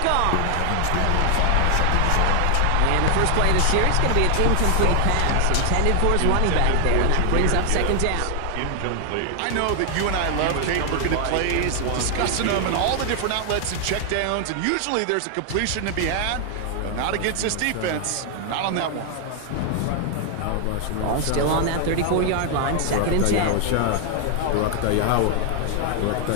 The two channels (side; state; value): both; different; correlation 0.00